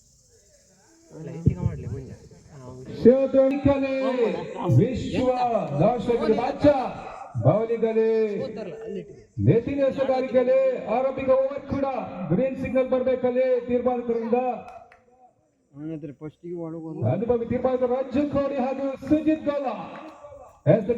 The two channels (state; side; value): identical; both; correlation 1.00